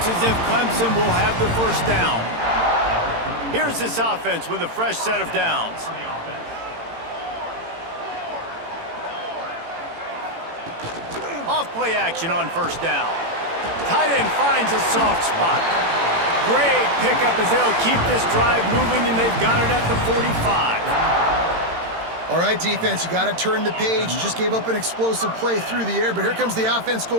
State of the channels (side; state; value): left; late; 18 ms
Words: as if Clemson will have the first down. Here's this offense with a fresh set of downs. Off play action on first down. Tight end finds a soft spot. Great pickup as they'll keep this drive moving, and they've got it at the 45. All right, defense, you got to turn the page. You just gave up an explosive play through the air, but here comes the offense